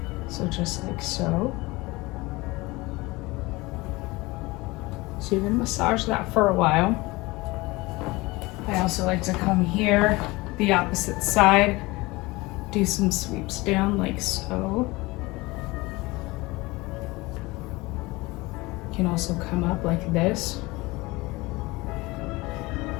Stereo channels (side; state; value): right; quieter; 22.2 dB